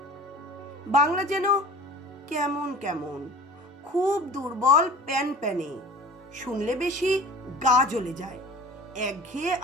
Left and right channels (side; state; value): both; normal; correlation 0.41